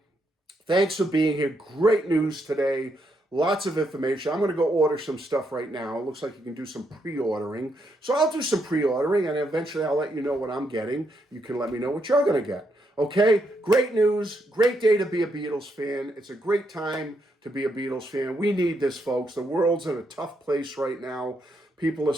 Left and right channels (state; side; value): normal; both; correlation 0.78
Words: Thanks for being here. Great news today. Lots of information. I'm going to go order some stuff right now. It looks like you can do some pre-ordering. So I'll do some pre-ordering, and eventually I'll let you know what I'm getting. You can let me know what you're going to get. Okay? Great news. Great day to be a Beatles fan. It's a great time to be a Beatles fan. We need this, folks. The world's in a tough place right now. People are